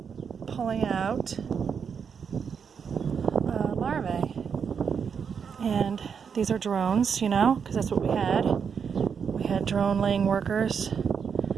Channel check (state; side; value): quieter; left; 6.7 dB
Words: pulling out larvae. And these are drones, because that's what we had. We had drone laying workers.